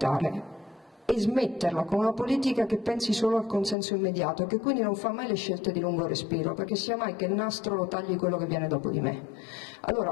e smetterla con una politica che pensi solo al consenso immediato e che quindi non fa mai le scelte di lungo respiro, perché sia mai che il nastro lo tagli quello che viene dopo di me.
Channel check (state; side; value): drops out; right; at 3.8 s